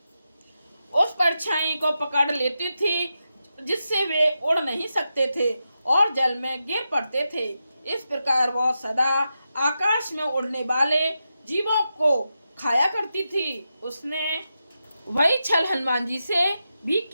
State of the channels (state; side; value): inverted; both; correlation -0.88